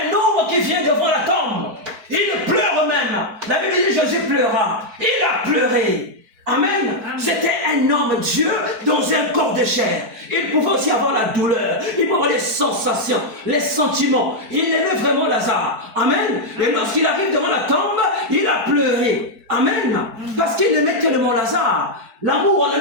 homme qui vient devant la tombe. Il pleure même. La Bible dit Jésus pleura. Il a pleuré. Amen. C'était un homme Dieu dans un corps de chair. Il pouvait aussi avoir la douleur. Il pouvait avoir les sensations, les sentiments. Il aimait vraiment Lazare. Amen. Et lorsqu'il arrive devant la tombe, il a pleuré. Amen. Parce qu'il aimait tellement Lazare. L'amour, on a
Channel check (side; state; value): left; late; 4.5 ms